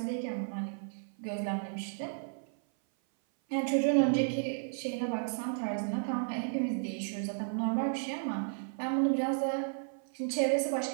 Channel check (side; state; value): left; silent; 56 dB below the other